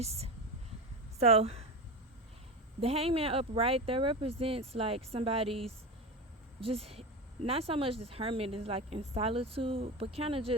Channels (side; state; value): both; normal; correlation 0.23